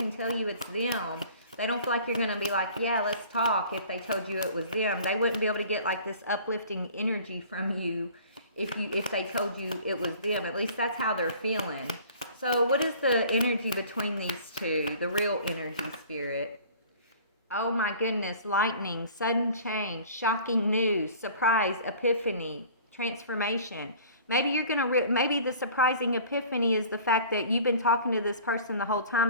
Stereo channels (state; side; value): inverted; both; correlation -0.47